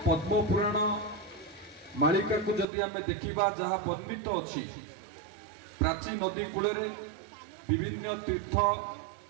पद्म पुराण मालिका को जदि आम देखा जहाँ वर्णित अच्छी प्राची नदी कूल विभिन्न तीर्थ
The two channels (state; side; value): drops out; left; at 2.7 s